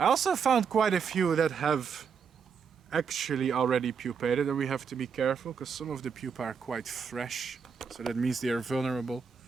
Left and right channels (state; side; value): quieter; left; 6.4 dB